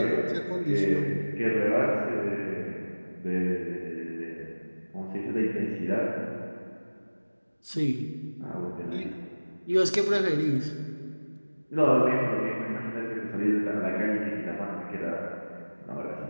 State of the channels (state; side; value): inverted; both; correlation -1.00